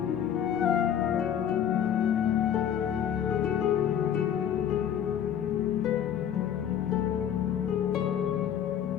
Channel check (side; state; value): right; quieter; 9.4 dB